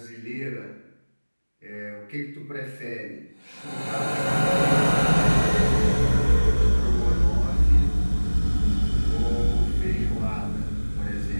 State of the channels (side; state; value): both; inverted; correlation -1.00